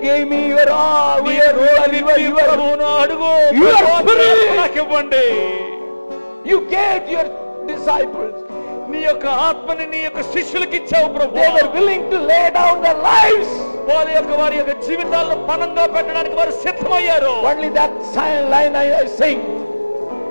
give me your ప్రభువును అడుగు. నాకు ఇవ్వండి. యు గేవ్ యువర్ డిసైపుల్స్, నీ యొక్క ఆత్మని నీ యొక్క శిష్యులకు ఇచ్చావు ప్రభువా. They were willing to lay down there lives, వారి యొక్క జీవితాలను పణంగా పెట్టడానికి వారు సిద్ధమయ్యారు. Only that line I sing,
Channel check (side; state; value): both; inverted; correlation -1.00